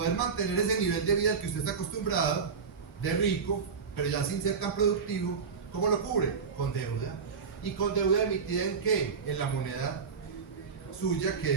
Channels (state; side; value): quieter; left; 5.7 dB